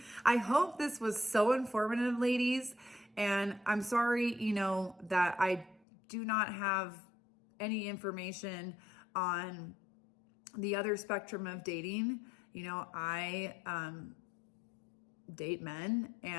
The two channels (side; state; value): right; drops out; at 5.8 s